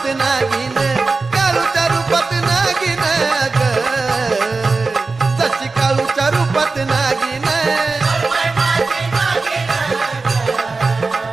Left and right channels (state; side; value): quieter; left; 3.9 dB